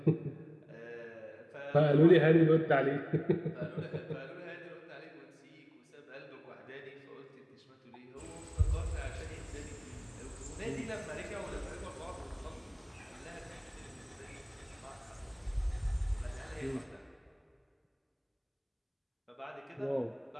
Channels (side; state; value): both; identical; correlation 1.00